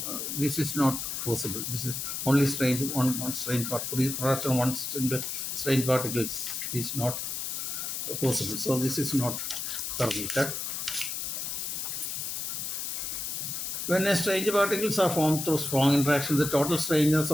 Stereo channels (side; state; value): left; noise; hiss, 3 dB below the sound